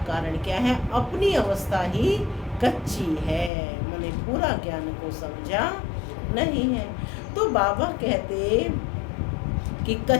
कारण क्या है? अपनी अवस्था ही कच्ची है, मैंने पूरा ज्ञान को समझा नहीं है। तो बाबा कहते कि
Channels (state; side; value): drops out; right; at 3.5 s